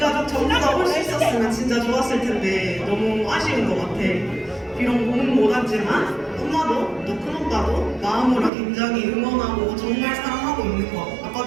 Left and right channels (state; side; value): drops out; left; at 8.5 s